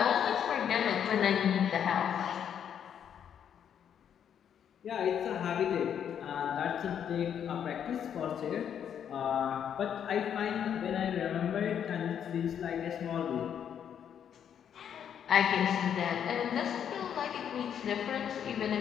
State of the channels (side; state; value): right; quieter; 8.7 dB